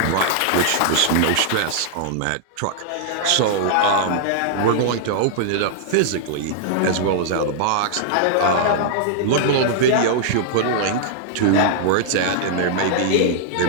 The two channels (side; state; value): both; different; correlation -0.01